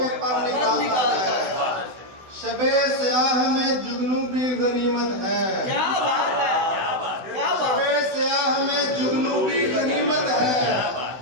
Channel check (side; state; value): left; late; 16 ms